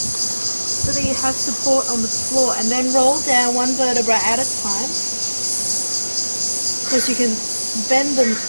so that you have support on the floor, and then roll down one vertebra at a time, because you can bend the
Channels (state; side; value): inverted; both; correlation -1.00